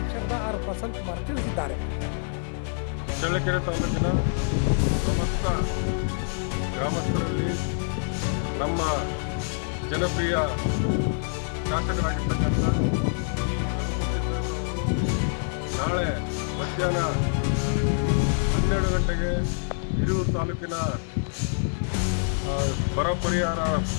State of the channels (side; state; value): right; silent; 61 dB below the other